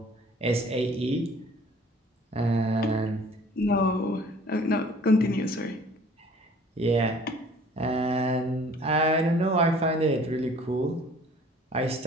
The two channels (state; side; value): normal; both; correlation 0.52